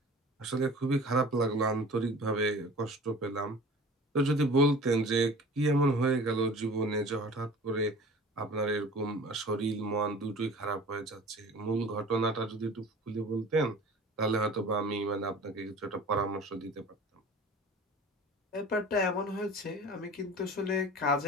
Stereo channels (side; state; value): both; normal; correlation 0.42